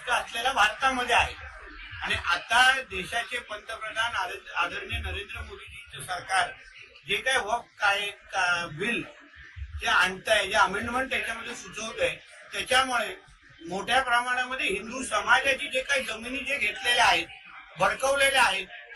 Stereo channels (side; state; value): both; identical; correlation 1.00